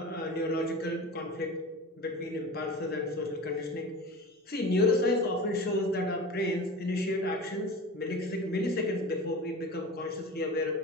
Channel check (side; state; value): both; normal; correlation 0.34